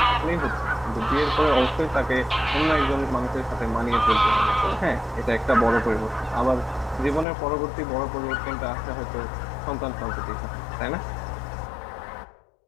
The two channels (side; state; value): right; drops out; at 7.2 s